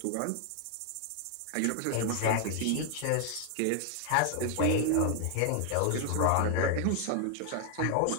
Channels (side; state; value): both; different; correlation 0.00